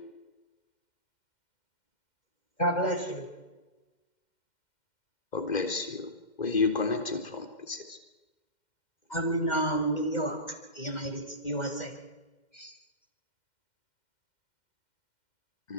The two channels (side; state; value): right; late; 2.1 ms